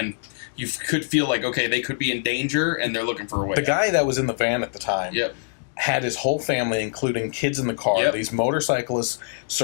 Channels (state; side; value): silent; right; digital silence